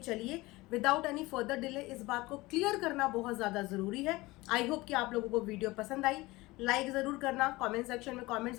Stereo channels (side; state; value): right; quieter; 20.8 dB